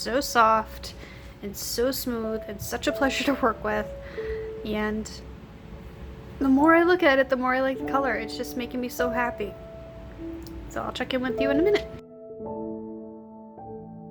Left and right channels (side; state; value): both; identical; correlation 1.00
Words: soft and so smooth and such a pleasure to work with. And the more I look at it, the more I like the color. It's just making me so happy. So I'll check in with you in a minute.